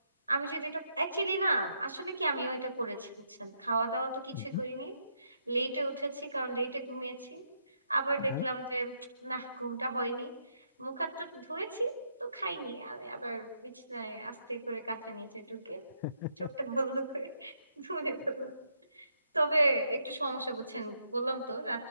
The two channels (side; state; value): both; inverted; correlation -0.78